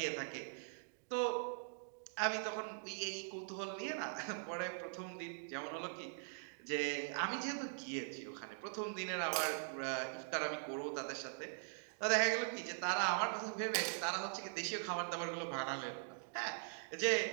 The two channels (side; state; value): left; silent; digital silence